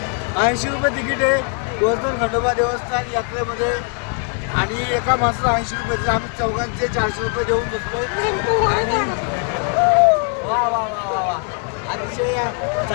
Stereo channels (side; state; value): right; quieter; 38.7 dB